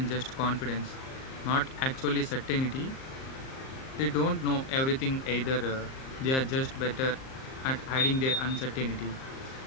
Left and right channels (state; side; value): late; right; 38 ms